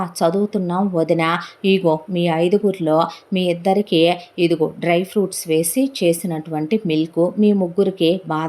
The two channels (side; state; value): both; identical; correlation 1.00